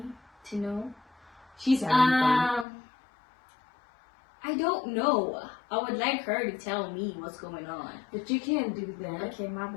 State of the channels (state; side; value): drops out; right; at 2.7 s